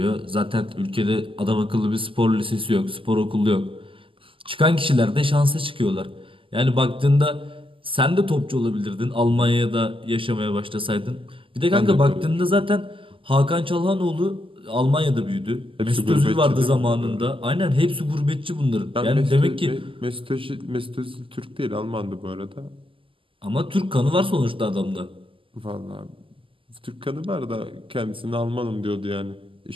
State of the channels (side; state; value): left; late; 0.25 ms